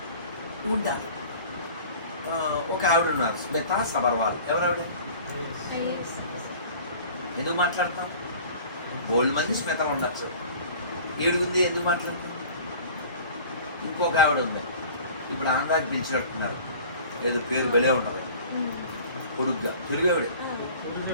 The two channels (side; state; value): both; inverted; correlation -0.45